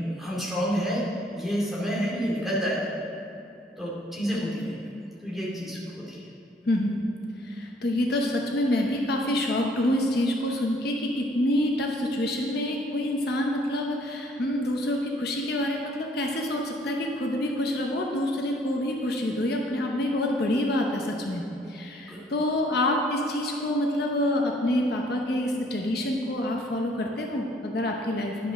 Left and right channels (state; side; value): normal; both; correlation 0.62